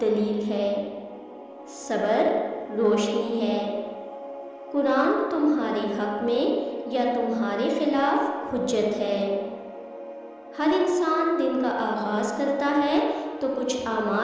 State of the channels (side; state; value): both; identical; correlation 1.00